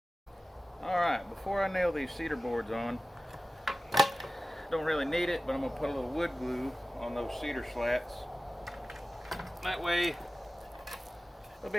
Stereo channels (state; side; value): normal; both; correlation 0.95